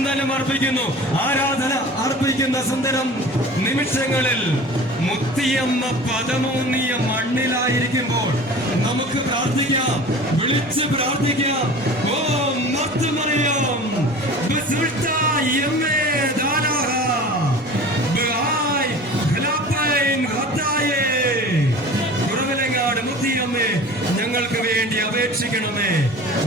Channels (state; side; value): normal; both; correlation 0.39